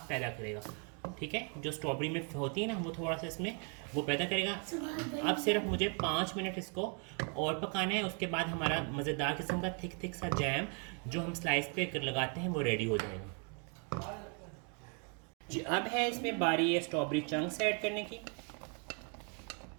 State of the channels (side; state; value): left; quieter; 38.6 dB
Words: पैदा करेगा, ठीक है। जो स्ट्रॉबेरी में होती है ना, वो थोड़ा सा इसमें वो पैदा करेगा। अब सिर्फ मुझे 5 मिनट इसको और पकाना है। उसके बाद हमारा मज़ेदार किस्म का थिक सा जैम जो हम स्लाइस पे लगाते हैं वो रेडी हो जाएगा जी। अब है इसमें बारी है स्ट्रॉबेरी चंक्स ऐड करने की।